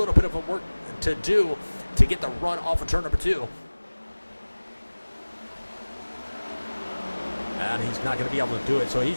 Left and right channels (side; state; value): both; inverted; correlation -1.00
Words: bit of a work to do to get the run off of turn number 2. And he's not going to be able to do it, so